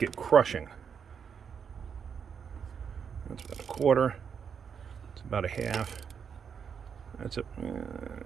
crushing. That's about 1/4. It's about 1/2.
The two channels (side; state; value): left; quieter; 7.0 dB